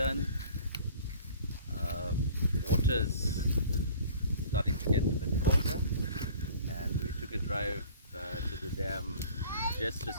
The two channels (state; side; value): inverted; both; correlation -0.47